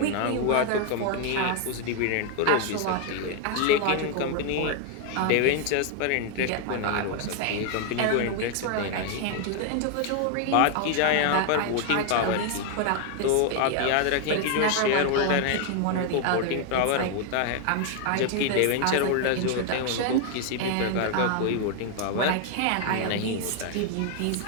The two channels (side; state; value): both; different; correlation 0.01